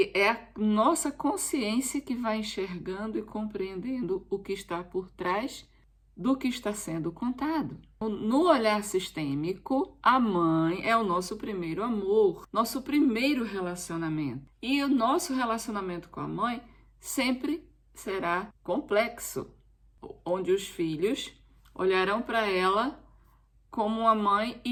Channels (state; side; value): identical; both; correlation 1.00